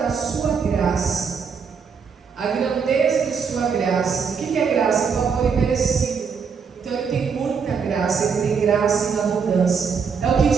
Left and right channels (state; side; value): quieter; left; 6.0 dB